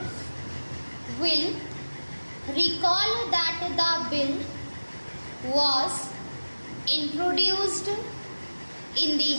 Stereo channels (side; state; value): both; inverted; correlation -1.00